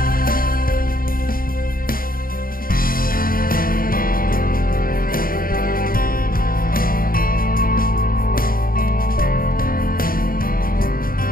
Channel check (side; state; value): right; late; 0.42 ms